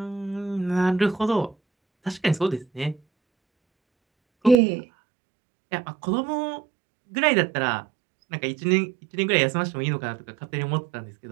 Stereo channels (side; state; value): left; drops out; at 4.5 s